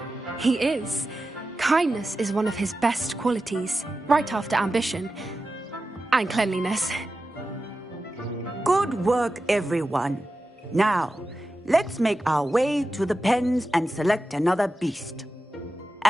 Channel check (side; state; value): both; normal; correlation 0.92